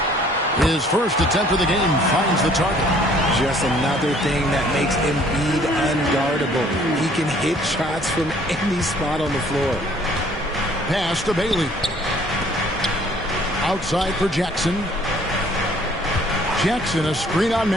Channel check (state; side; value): normal; both; correlation 0.58